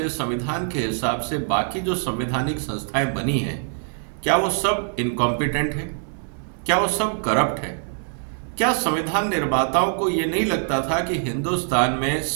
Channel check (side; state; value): left; silent; 57 dB below the other